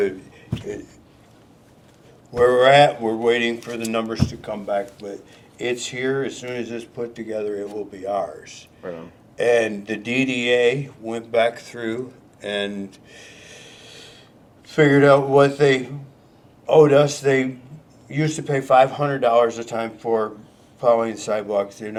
where we're at, we're waiting for the numbers to come back, but it's here. As soon as it's put together, it will be ours. Right on. And the DDA went back through and figured out what they owed us. They used to pay $500 a time for plowing sidewalks. They're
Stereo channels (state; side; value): identical; both; correlation 1.00